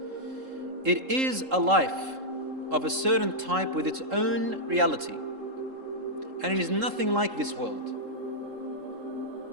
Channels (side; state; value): left; late; 3.7 ms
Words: It is a life of a certain type with its own reality, and it is nothing like this world.